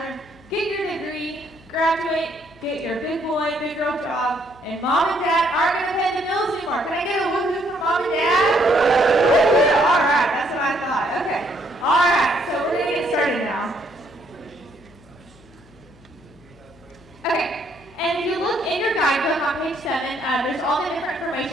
get your degree, graduate, get your big boy, big girl job, and mom and dad aren't going to pay the bills anymore. Can I get a woo-hoo from mom and dad? All right, that's what I thought. Okay, all right, so we're going to get started now. Okay, and if you look in your guidebook on page 7, there's all the different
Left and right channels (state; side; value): noise; left; hum, 27 dB below the sound